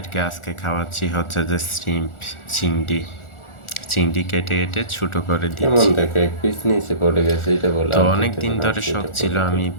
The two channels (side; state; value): right; late; 1.4 ms